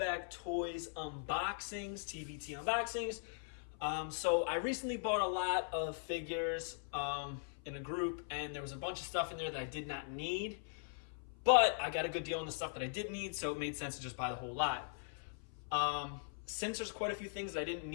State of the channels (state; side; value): silent; right; 51 dB below the other